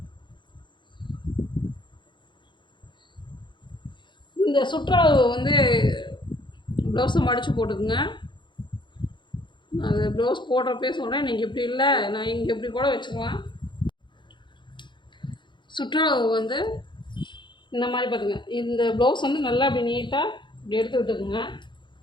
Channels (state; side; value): late; right; 0.23 ms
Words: இந்த சுற்றளவு வந்து ப்ளவுஸை மடித்து போட்டுக்குங்க. அது ப்ளவுஸ் போடுறப்பே சொல்கிறேன், நீங்கள் இப்படி இல்லை நான் இங்கே இப்படி கூட வச்சுக்கலாம். சுற்றளவு வந்து இந்த மாதிரி பார்த்துங்க. இந்த ப்ளவுஸ் வந்து நல்லா அப்படி நீட்டாக இப்படி எடுத்து விட்டுக்குங்க.